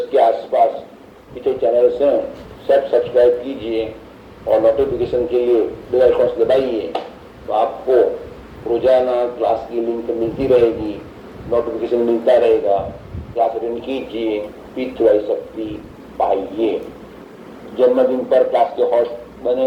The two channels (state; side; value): identical; both; correlation 1.00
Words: के आसपास पिछले चैनल्स हैं सब सब्सक्राइब कीजिए और नोटिफिकेशन के लिए बेल आइकन दबाइए, तो आपको रोजाना क्लास की लिंक मिलती रहेगी, नोटिफिकेशन मिलता रहेगा। क्लास अटेंड कीजिए, P3Y शक्ति पाइए। जन्मदिन पर क्लास के होस्ट